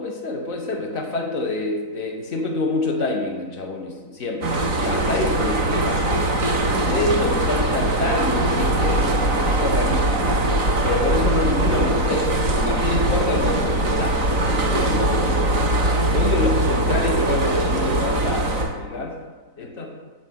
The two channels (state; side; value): late; left; 4.0 ms